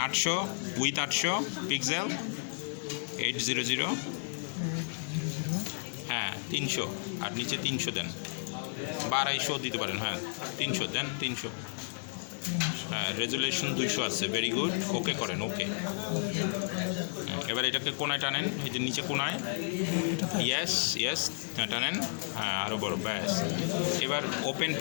800 উইথ 800 পিক্সেল 800, হ্যাঁ 300, আর নিচে 300 দেন বা 250 দিতে পারেন, হ্যাঁ 300 দেন, 300, হ্যাঁ রেজুলেশন 200 আছে, ভেরি গুড, ওকে করেন, ওকে। এবার এটাকে কোনায় টানেন, এই যে নিচে কোনায়, ইয়েস ইয়েস টানেন, হ্যাঁ আরও বড়, ব্যাস। এবার open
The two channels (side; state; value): right; silent; 56 dB below the other